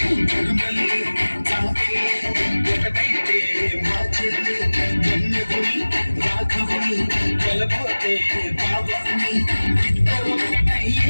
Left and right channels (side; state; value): both; inverted; correlation -1.00